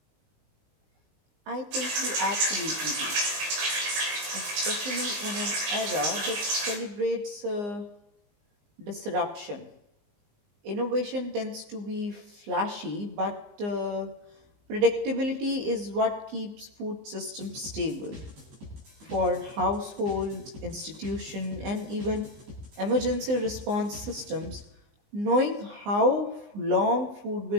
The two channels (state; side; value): late; left; 19 ms